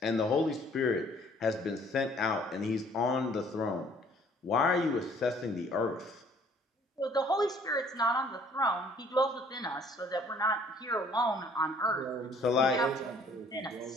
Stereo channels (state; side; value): normal; both; correlation 0.58